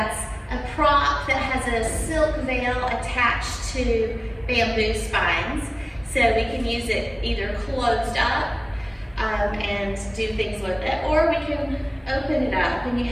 a prop that has a silk veil attached to bamboo spines. So we can use it either closed up and do things with it, or we can open it up and you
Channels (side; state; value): both; identical; correlation 1.00